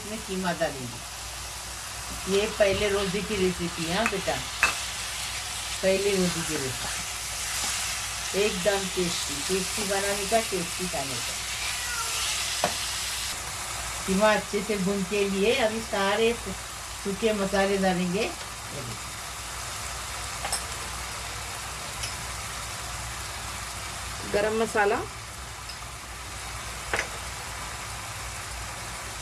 कीमा डालेंगे। ये पहले रोज़े की रेसिपी है बेटा, पहले रोज़े की रेसिपी, एकदम टेस्टी बनाने का, टेस्टी खाने का। कीमा अच्छे से भून के लिए अभी सारे सूखे मसाले डालेंगे। गरम मसाला,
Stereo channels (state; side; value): identical; both; correlation 1.00